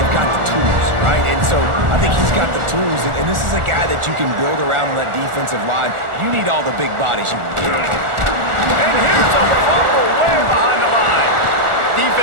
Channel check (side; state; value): left; late; 1.4 ms